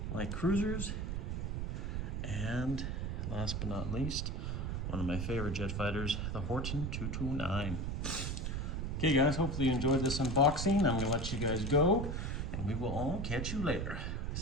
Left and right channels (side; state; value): right; noise; rumble, 2 dB below the sound